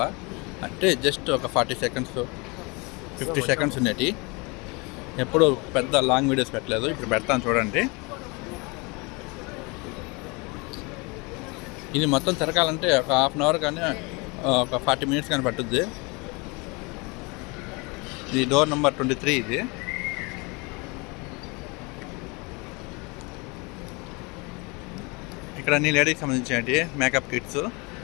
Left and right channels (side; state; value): right; quieter; 28.3 dB